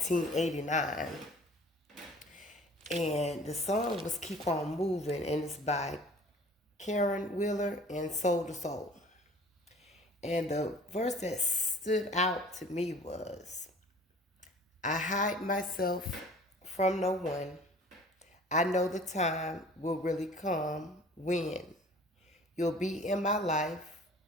And the song was Keep On Moving, and it's by Karen Wheeler and Soul to Soul. And the verse that stood out to me was, I hide myself from no one. I know the time will really come when you'll be in my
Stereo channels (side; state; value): both; normal; correlation 0.49